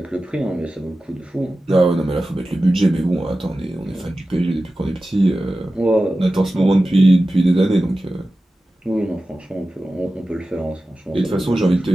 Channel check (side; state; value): both; normal; correlation 0.94